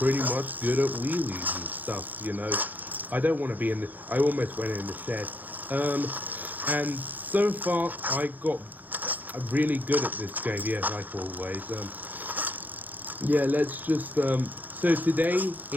much good at wheelies and stuff, you know. I don't want to be in the... I almost went in the shed. And so far, I got really good at this game, yeah, like always. Yeah, let's just... So today,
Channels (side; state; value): left; late; 0.084 ms